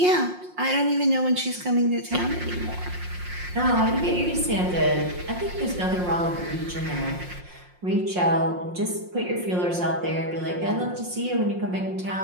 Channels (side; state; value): left; late; 5.6 ms